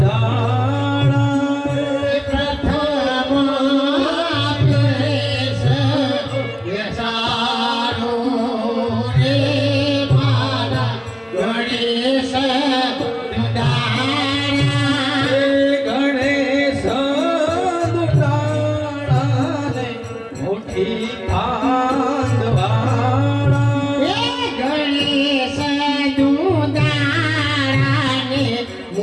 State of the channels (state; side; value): identical; both; correlation 1.00